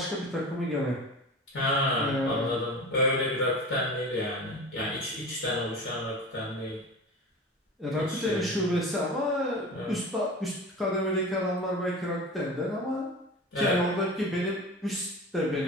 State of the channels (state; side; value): normal; both; correlation 0.33